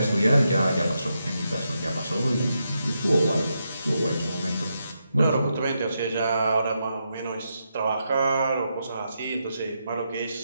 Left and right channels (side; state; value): both; inverted; correlation -0.83